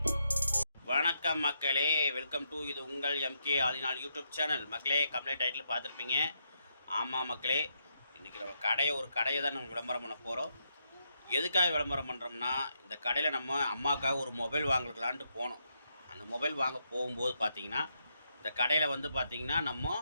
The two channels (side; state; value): both; inverted; correlation -0.79